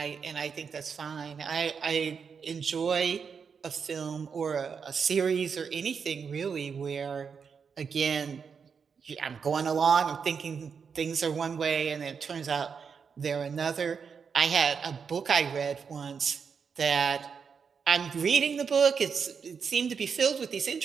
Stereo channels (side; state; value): left; quieter; 6.2 dB